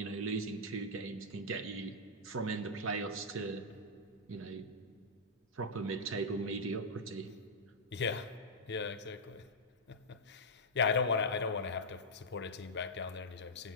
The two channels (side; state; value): both; normal; correlation -0.08